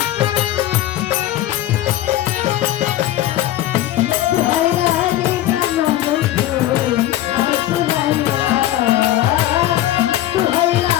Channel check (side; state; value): right; quieter; 14.0 dB